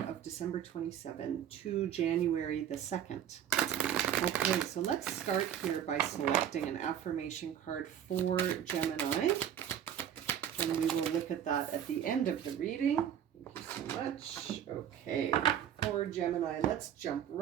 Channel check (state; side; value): quieter; left; 9.7 dB